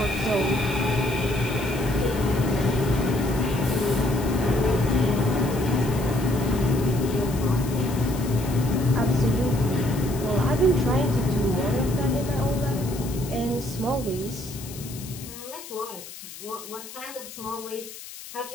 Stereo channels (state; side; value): noise; left; hiss, 14 dB below the sound